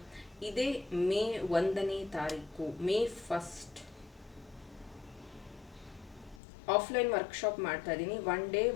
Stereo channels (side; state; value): right; drops out; at 6.4 s